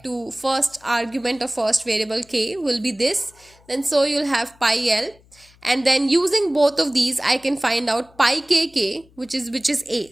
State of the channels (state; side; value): noise; left; hum, 29 dB below the sound